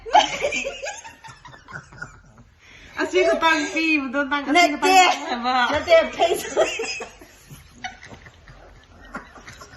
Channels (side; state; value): both; identical; correlation 1.00